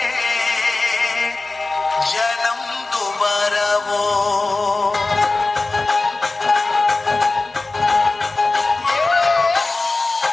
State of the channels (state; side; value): quieter; right; 3.3 dB